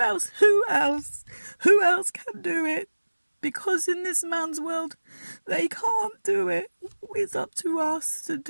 else can do it? Because in this man's world, they can't do it. It's up to us to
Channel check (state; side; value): inverted; both; correlation -1.00